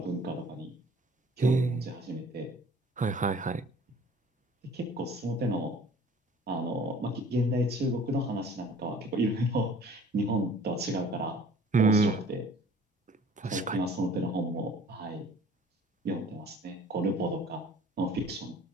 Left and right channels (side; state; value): both; normal; correlation 0.50